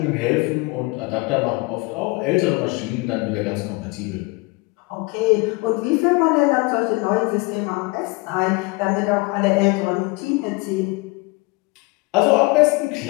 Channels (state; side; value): quieter; right; 25.8 dB